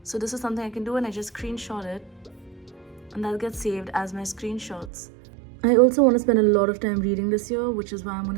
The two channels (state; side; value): drops out; left; at 4.9 s